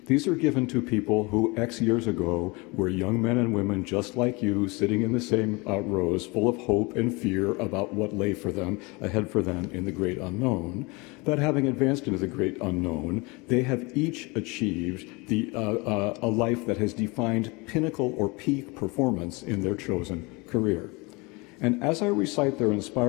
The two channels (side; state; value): right; quieter; 26.5 dB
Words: These are given to people who X years ago were young men and women just like you, sitting in the same rows, full of hope and fear about what lay ahead for them in the great unknown. But having advanced into the great unknown, they have each achieved a life that has defined pinnacle or peak performance in their chosen career. And as I recite their